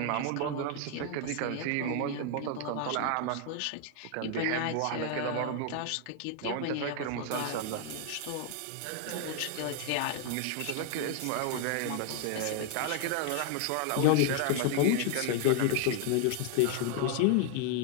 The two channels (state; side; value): different; both; correlation 0.00